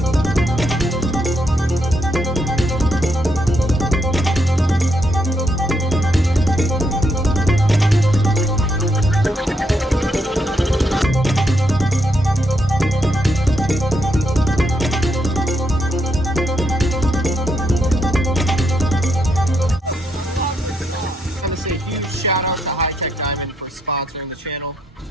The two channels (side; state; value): both; normal; correlation 0.78